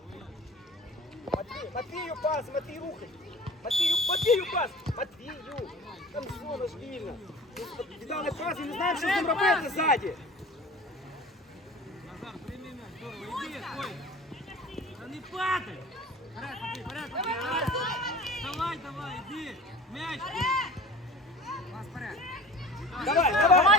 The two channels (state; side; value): normal; both; correlation 0.41